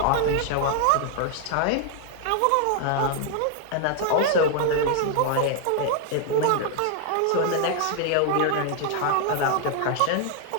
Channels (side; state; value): both; different; correlation 0.00